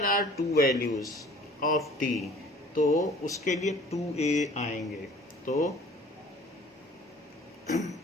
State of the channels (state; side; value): normal; both; correlation 0.50